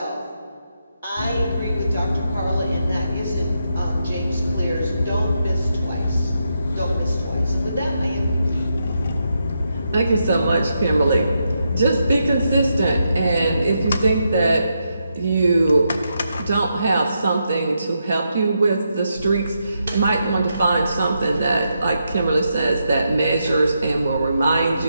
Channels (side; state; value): both; inverted; correlation -0.83